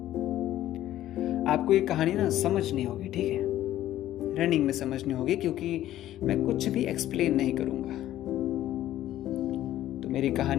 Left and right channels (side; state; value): right; quieter; 13.3 dB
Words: आपको ये कहानी ना समझनी होगी, ठीक है, रनिंग में समझनी होगी, क्योंकि मैं कुछ भी एक्सप्लेन नहीं करूँगा। तो मेरी